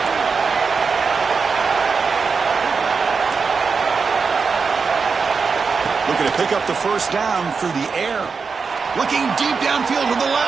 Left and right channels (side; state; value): left; quieter; 5.1 dB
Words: Looking to pick up the 1st down through the air. Looking deep downfield to the